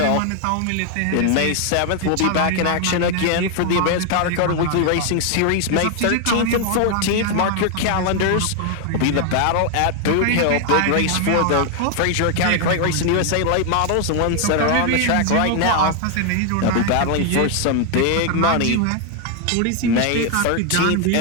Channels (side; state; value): both; different; correlation 0.01